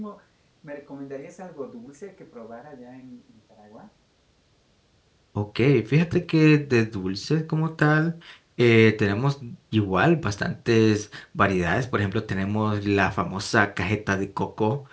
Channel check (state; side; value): identical; both; correlation 1.00